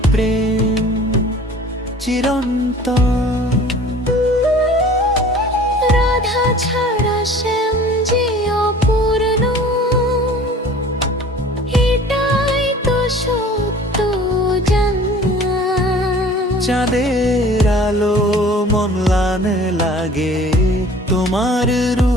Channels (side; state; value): both; normal; correlation 0.46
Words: প্রেম চিরন্তন। রাধা ছাড়া শ্যাম যে অপূর্ণ, এটাই তো সত্য জানা। চাঁদের আলো মন লাগে তোমার